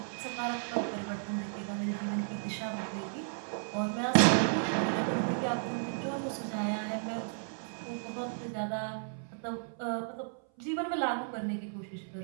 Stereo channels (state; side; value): silent; left; 55 dB below the other